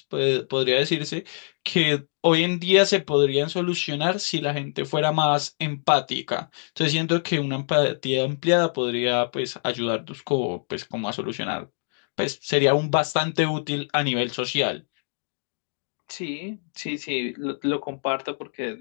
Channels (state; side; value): silent; right; 62 dB below the other